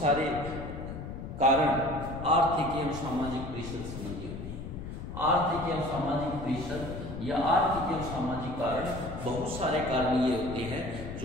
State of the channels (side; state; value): left; noise; rumble, 9 dB below the sound